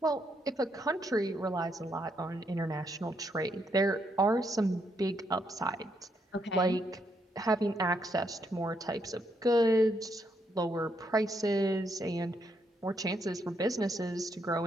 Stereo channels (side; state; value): both; normal; correlation 0.77